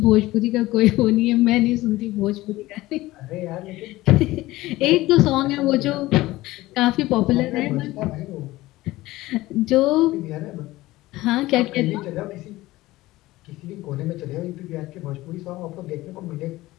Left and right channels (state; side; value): quieter; right; 18.0 dB